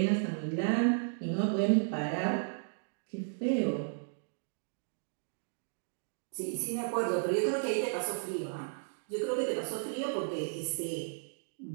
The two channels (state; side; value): silent; left; digital silence